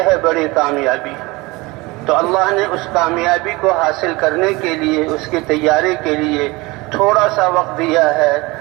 ہے بڑی کامیابی۔ تو اللہ نے اس کامیابی کو حاصل کرنے کے لیے، اس کی تیاری کے لیے تھوڑا سا وقت دیا ہے،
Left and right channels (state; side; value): quieter; left; 23.2 dB